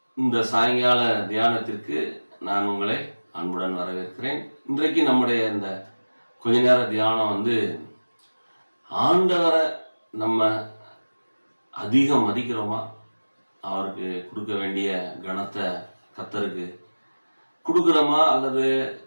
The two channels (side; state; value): both; inverted; correlation -1.00